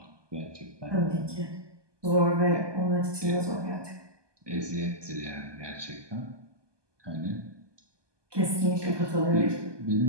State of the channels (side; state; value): left; late; 1.2 ms